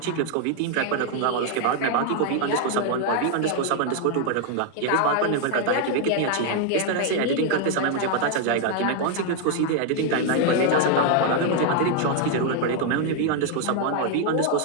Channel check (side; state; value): both; different; correlation 0.00